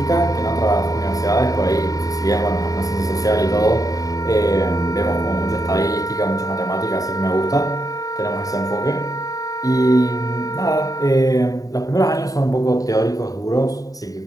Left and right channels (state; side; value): late; right; 0.17 ms